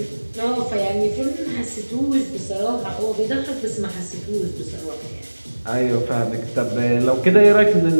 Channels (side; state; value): both; inverted; correlation -1.00